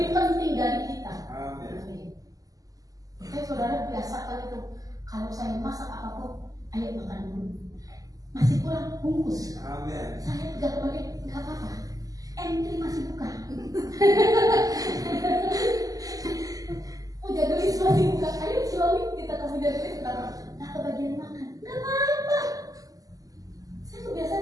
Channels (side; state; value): left; late; 0.17 ms